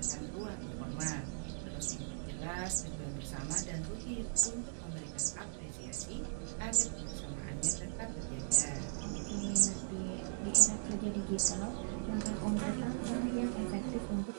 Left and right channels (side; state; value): left; silent; digital silence